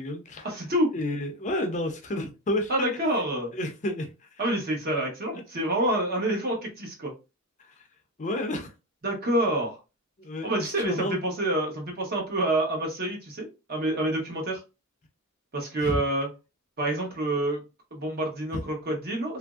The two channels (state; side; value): normal; both; correlation 0.20